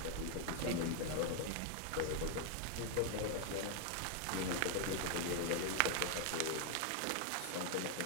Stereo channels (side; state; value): both; different; correlation 0.00